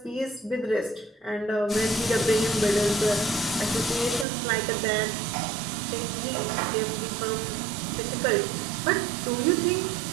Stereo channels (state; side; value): drops out; left; at 4.2 s